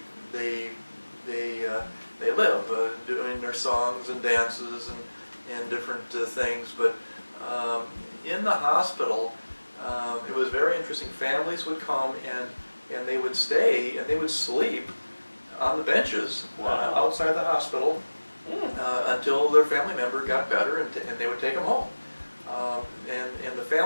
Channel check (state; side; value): inverted; both; correlation -1.00